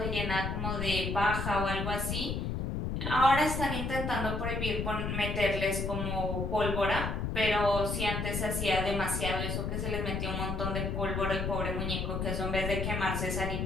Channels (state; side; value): noise; left; rumble, 2 dB below the sound